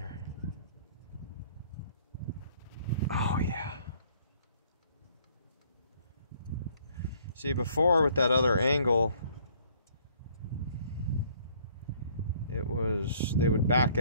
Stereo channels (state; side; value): inverted; both; correlation -0.60